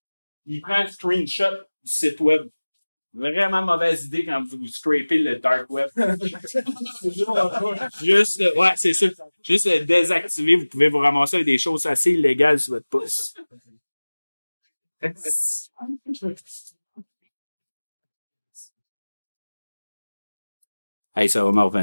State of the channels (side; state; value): both; inverted; correlation -1.00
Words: il prend un screenshot du site web. Vraiment mauvaise idée quand vous scrapez le dark web. Juste, ouais, c'est ça. Juste le désactiver, vous pouvez vous ramasser avec des choses assez illégales sur votre pouce. Hey, ça va me